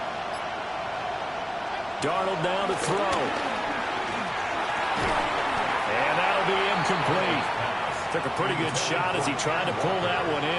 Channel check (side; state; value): both; identical; correlation 1.00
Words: Darnold now to throw. And that'll be incomplete. Took a pretty good shot as he tried to pull that one